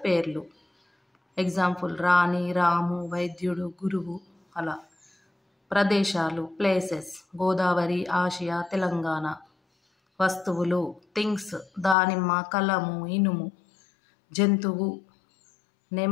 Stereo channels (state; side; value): drops out; right; at 12.0 s